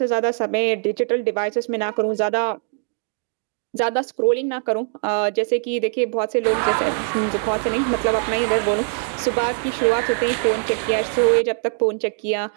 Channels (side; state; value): left; silent; 64 dB below the other